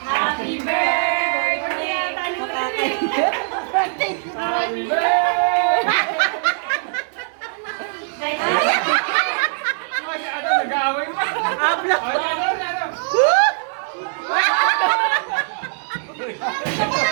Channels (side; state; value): left; silent; digital silence